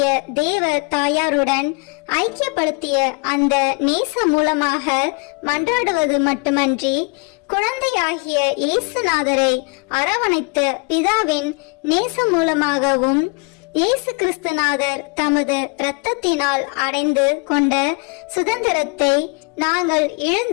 தேவ தாயாருடன் ஐக்கியப்படுத்திய அந்த நேசம் மூலமாக மன்றாடுவது மட்டுமன்றி, குழந்தையாகிய இயேசுநாதரை அரவணைத்த பிதாவின் நேசம் மூலமாகவும் இயேசு கிறிஸ்துநாதர் தமது இரத்தத்தினால் அடைந்து கொண்ட சுதந்திரத்தை நாங்கள்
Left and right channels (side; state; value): right; quieter; 32.8 dB